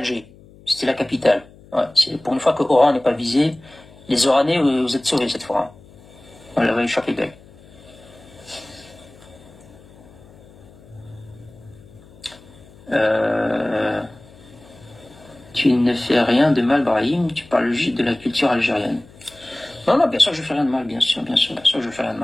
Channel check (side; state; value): left; noise; hum, 24 dB below the sound